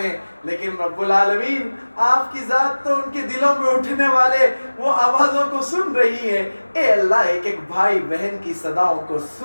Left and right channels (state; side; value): inverted; both; correlation -1.00